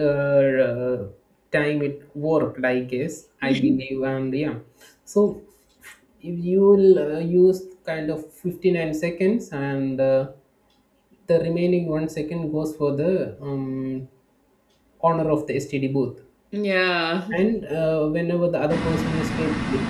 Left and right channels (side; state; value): both; identical; correlation 1.00